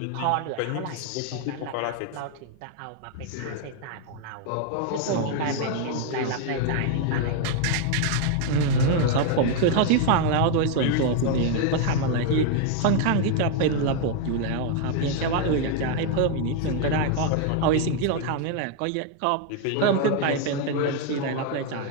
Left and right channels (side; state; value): both; different; correlation 0.00